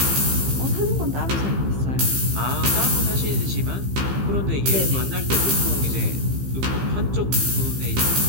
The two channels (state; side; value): late; left; 15 ms